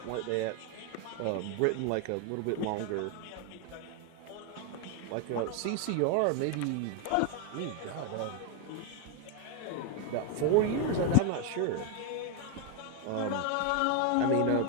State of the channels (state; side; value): different; both; correlation 0.01